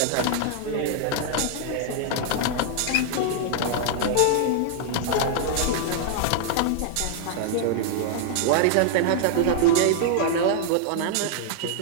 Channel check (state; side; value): different; both; correlation -0.01